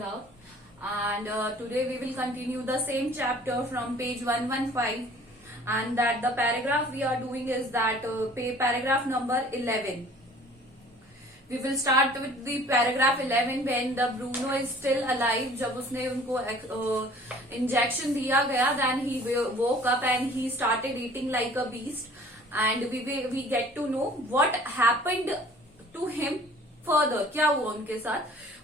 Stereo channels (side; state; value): both; normal; correlation 0.51